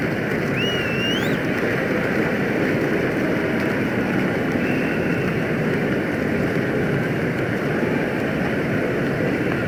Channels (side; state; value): both; identical; correlation 1.00